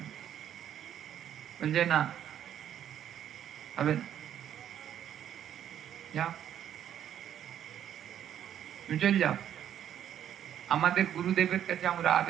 বলছে না, হবে না, যাও, তুমি চল যাও। আমাদের গুরুদেবের কাছে আমরা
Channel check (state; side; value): quieter; left; 10.2 dB